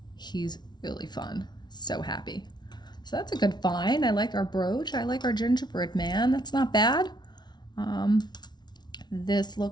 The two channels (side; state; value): right; late; 0.20 ms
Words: He's really fun. So happy. So that's a good find. I like our brooch. I like our gingerbread man. That's not bad. This